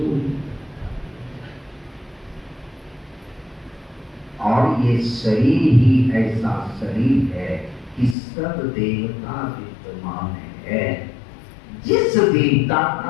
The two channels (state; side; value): drops out; right; at 8.2 s